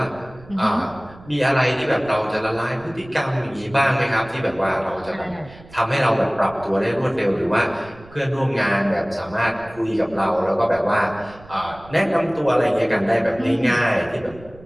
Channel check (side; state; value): right; noise; rumble, 21 dB below the sound